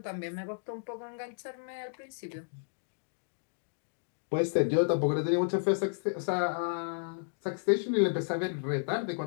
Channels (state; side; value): silent; right; digital silence